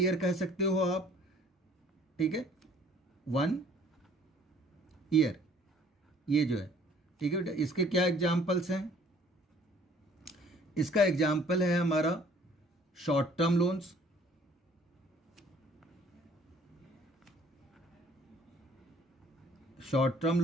कह सकते हो आप, ठीक है, 1 ईयर, ये जो है, ठीक है बेटा। इसके क्या एग्जाम्पल्स हैं, इसका एग्जाम्पल है हमारा short term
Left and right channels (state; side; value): normal; both; correlation 0.56